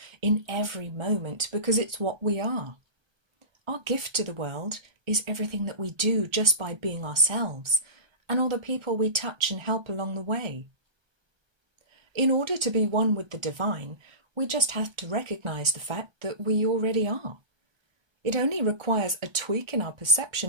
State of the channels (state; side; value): late; left; 1.3 ms